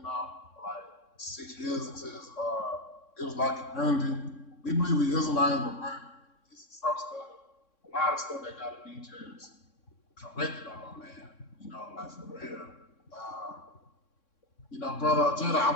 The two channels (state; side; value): late; right; 3.6 ms